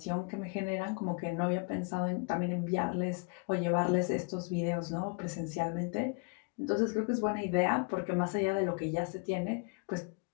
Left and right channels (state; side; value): quieter; right; 33.6 dB